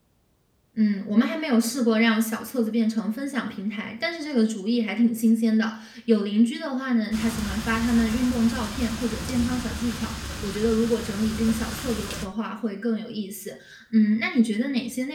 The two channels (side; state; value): both; identical; correlation 1.00